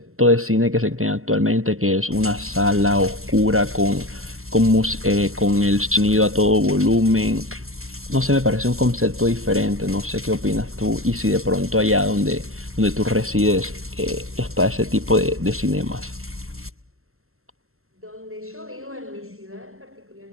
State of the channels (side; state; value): left; late; 0.62 ms